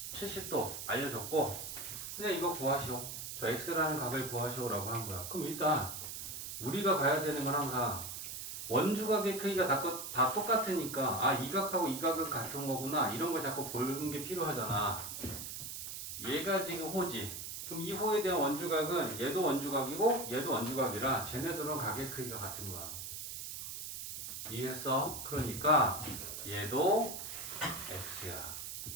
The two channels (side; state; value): right; noise; hiss, 7 dB below the sound